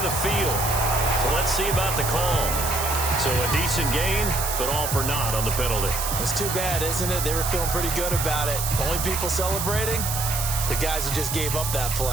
the field. So let's see about the call. So a decent gain, but all for naught on the penalty. It's too bad, isn't it? They were feeling pretty good about it. The only people celebrating, the guys who just gave up that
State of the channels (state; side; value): noise; right; hiss, 3 dB below the sound